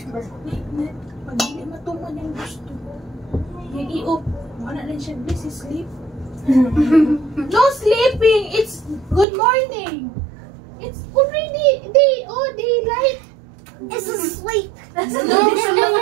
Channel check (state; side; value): drops out; left; at 9.2 s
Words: hindi matuman yung gusto. Yung i-up. Wala na siya. This is sleep. No sleeping. It's good morning. It's already day. Oh, daylight. It's asleep. No